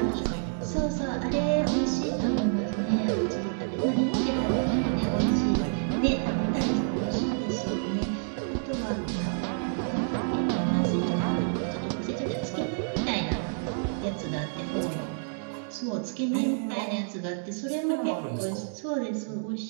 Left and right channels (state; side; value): silent; left; digital silence